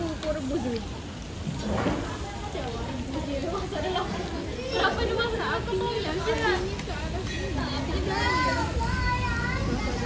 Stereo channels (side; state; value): both; identical; correlation 1.00